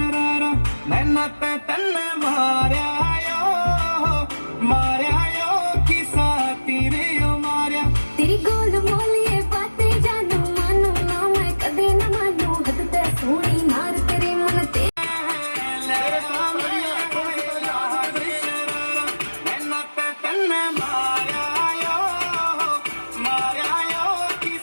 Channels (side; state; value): both; inverted; correlation -1.00